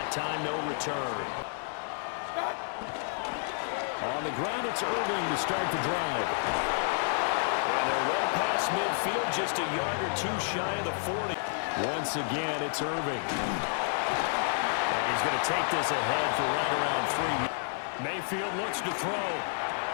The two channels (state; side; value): silent; right; 58 dB below the other